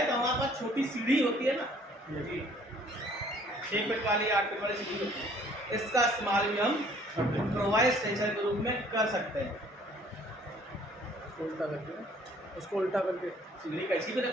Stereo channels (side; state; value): both; normal; correlation 0.58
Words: तो हमारे पास छोटी सीढ़ी होती है ना, 6 फीट वाली 8 फीट वाली सीढ़ी होती है, इसका इस्तेमाल भी हम इम्प्रोवाइज स्ट्रेचर के रूप में कर सकते हैं। उल्टा करके, उसको उल्टा करके सीढ़ी कैसी भी